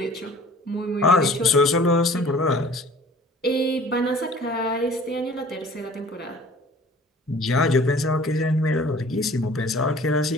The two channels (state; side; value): normal; both; correlation 0.48